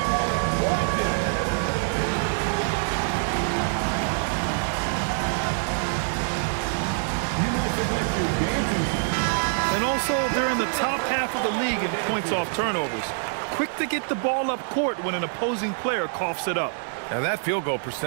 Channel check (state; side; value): silent; left; 62 dB below the other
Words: And also, they're in the top half of the league in points off turnovers. Quick to get the ball up court when an opposing player coughs it up. And that field goal